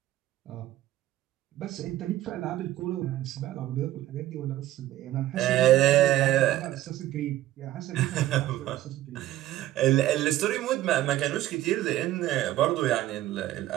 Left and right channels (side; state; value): left; quieter; 14.6 dB